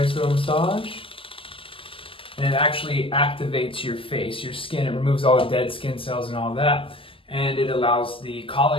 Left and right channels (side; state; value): right; late; 0.26 ms